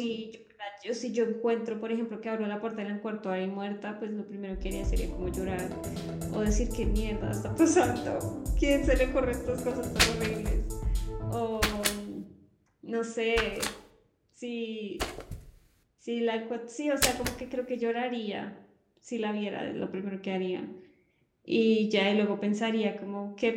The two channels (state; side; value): identical; both; correlation 1.00